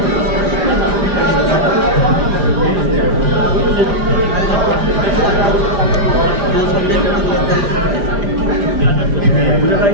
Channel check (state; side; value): late; left; 5.0 ms